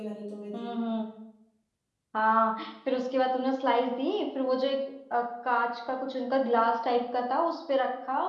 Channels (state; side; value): identical; both; correlation 1.00